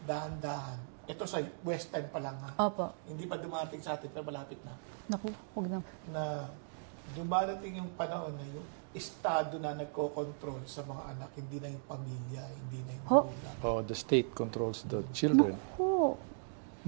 Ito sa Western pa lang Hindi pa dumarating sa atin, pero malapit na. Naku, huwag na. Na dumarating yung panahon na yung Estado na nagko-control sa mga anak, hindi na yung pamilya, hindi na yung magulang. The state controls the children.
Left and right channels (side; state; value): left; silent; digital silence